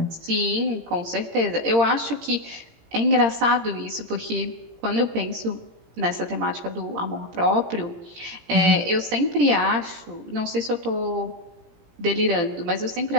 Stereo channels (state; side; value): late; left; 17 ms